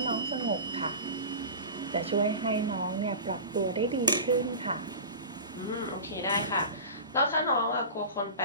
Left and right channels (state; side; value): inverted; both; correlation -0.32